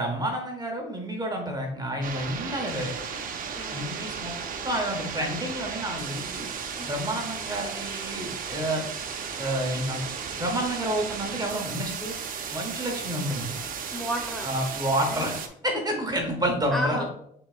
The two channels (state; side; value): normal; both; correlation 0.29